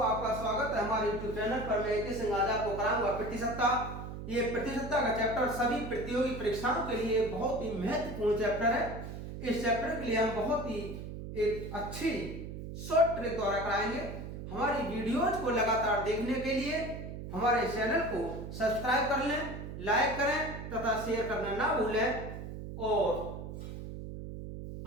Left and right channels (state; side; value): noise; right; hum, 8 dB below the sound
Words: आपका स्वागत है हमारे YouTube चैनल पर। मैं इस आज आपको कराऊंगा प्रतिशतता। ये प्रतिशतता का चैप्टर सभी प्रतियोगी परीक्षाओं के लिए बहुत ही महत्वपूर्ण चैप्टर है। इस चैप्टर के लिए हम बहुत ही एक अच्छी शॉर्ट ट्रिक द्वारा कराएंगे। हमारी वीडियोज को लगातार देखने के लिए हमारे चैनल को सब्सक्राइब कर लें, लाइक करें तथा शेयर करना ना भूलें। और